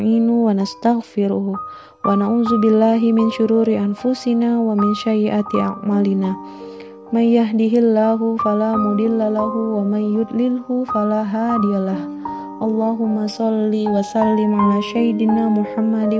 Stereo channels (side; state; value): both; identical; correlation 1.00